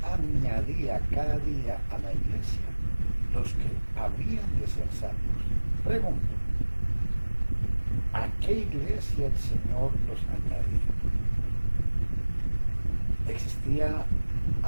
añadía cada día a la iglesia los que habían de ser salvos. Pregunto, ¿a qué iglesia el Señor los añadía? ¿Existía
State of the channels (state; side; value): inverted; both; correlation -1.00